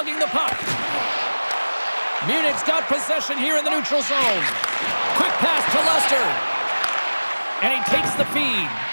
the puck. Munich's got possession here in the neutral zone. Quick pass to Lester. And he takes the feed.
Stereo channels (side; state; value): both; inverted; correlation -1.00